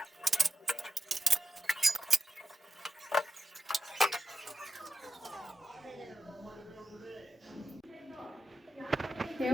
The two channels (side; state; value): both; normal; correlation 0.89